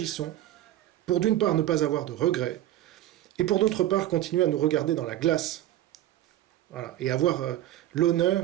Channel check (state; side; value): quieter; left; 13.4 dB